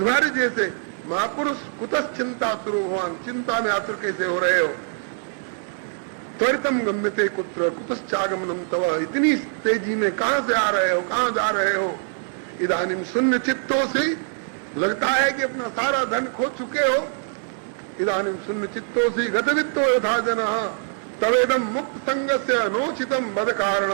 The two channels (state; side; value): silent; left; digital silence